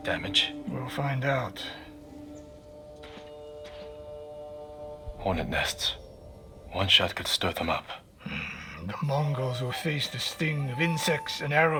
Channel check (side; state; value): both; identical; correlation 1.00